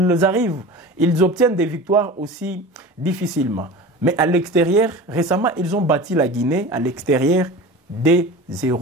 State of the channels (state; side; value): normal; both; correlation 0.34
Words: obtiennent des victoires aussi difficilement. Mais à l'extérieur, récemment, ils ont battu la Guinée à l'extérieur des